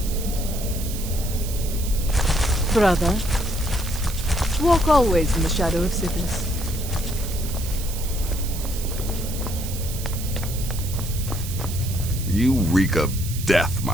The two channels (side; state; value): right; noise; hiss, 10 dB below the sound